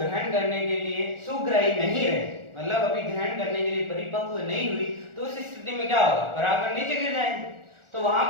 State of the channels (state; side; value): late; left; 1.4 ms